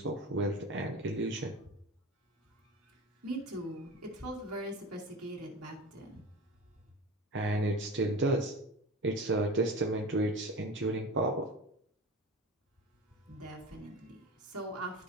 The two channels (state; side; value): normal; both; correlation 0.31